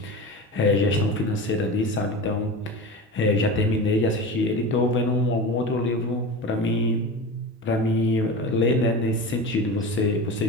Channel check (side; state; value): both; normal; correlation 0.28